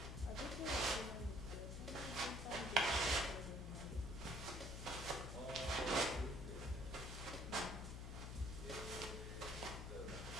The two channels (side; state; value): left; noise; hum, 6 dB below the sound